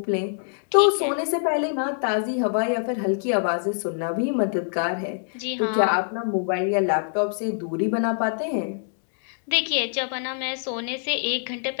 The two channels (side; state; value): right; silent; digital silence